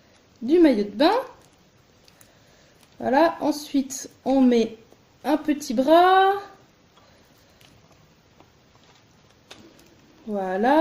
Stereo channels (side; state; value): both; identical; correlation 1.00